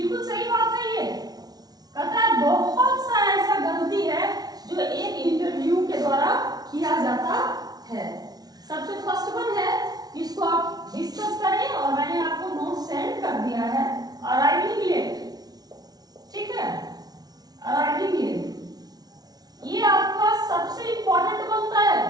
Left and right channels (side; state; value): left; late; 0.19 ms